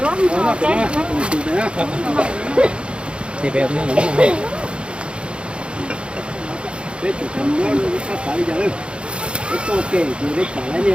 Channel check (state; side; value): late; left; 0.056 ms